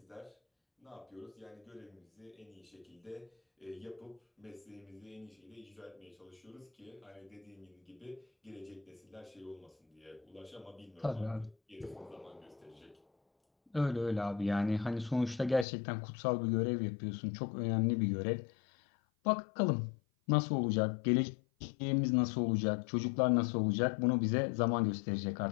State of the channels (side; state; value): right; drops out; at 15.7 s